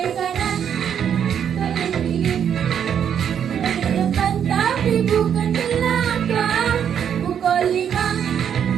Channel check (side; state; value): left; quieter; 8.5 dB